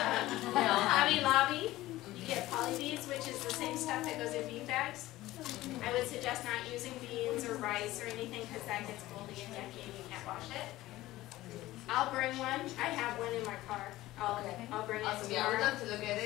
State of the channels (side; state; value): right; quieter; 16.8 dB